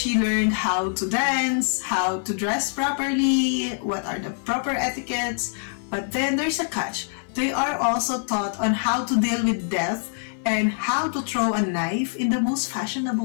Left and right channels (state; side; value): silent; right; 62 dB below the other